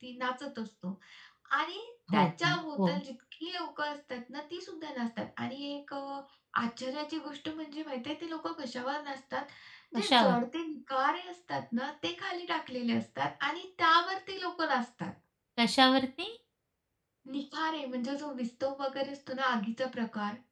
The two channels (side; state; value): both; identical; correlation 1.00